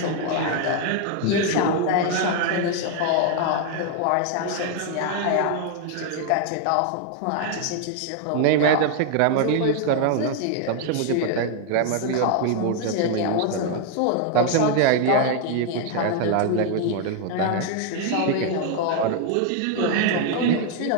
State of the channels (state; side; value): different; both; correlation 0.00